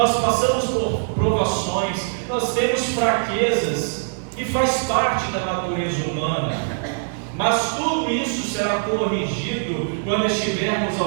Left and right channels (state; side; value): silent; left; digital silence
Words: passamos por provações, nós temos fraquezas, e faz parte da natureza humana, mas tudo isso será corrigido quando estivermos